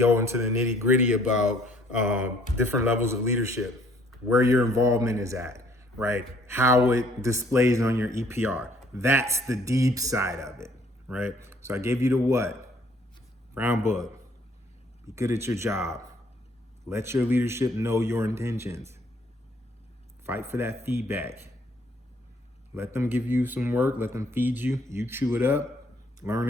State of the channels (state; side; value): normal; both; correlation 0.61